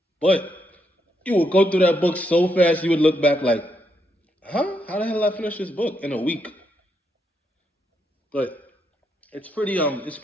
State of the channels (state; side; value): normal; both; correlation 0.79